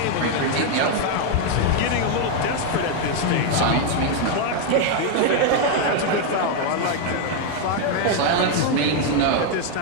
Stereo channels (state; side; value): different; both; correlation 0.01